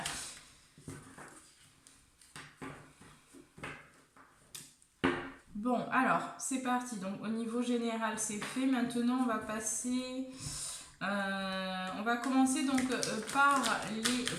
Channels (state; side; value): identical; both; correlation 1.00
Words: Bon, alors, c'est parti. Donc, au niveau général, c'est fait. Maintenant, on va passer... on va commencer donc par les